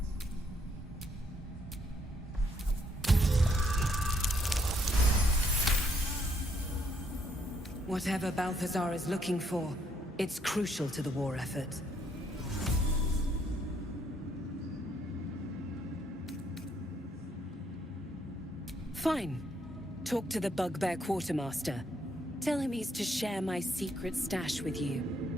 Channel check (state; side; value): normal; both; correlation 0.71